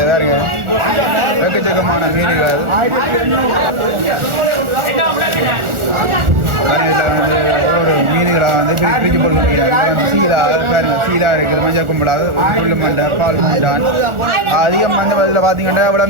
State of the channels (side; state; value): left; late; 1.4 ms